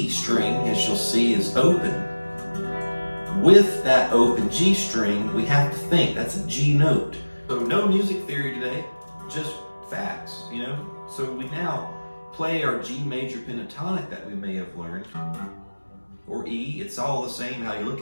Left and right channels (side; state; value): both; inverted; correlation -1.00